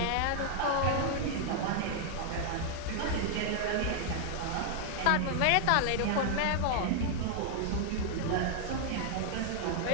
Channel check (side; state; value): both; different; correlation 0.00